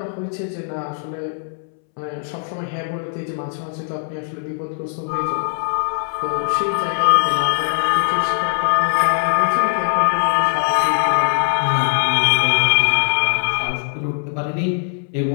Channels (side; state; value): right; silent; 66 dB below the other